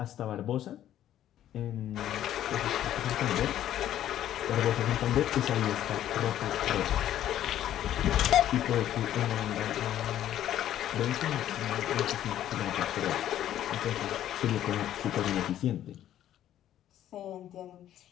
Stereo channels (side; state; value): right; quieter; 11.8 dB